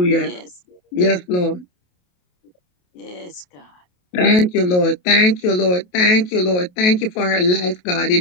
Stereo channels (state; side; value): late; right; 28 ms